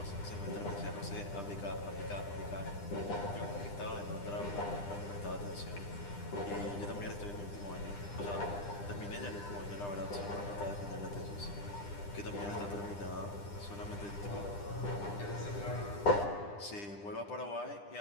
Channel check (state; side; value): late; right; 9.9 ms